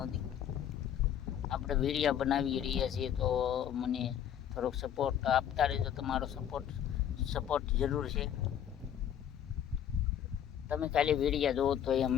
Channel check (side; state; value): right; quieter; 9.7 dB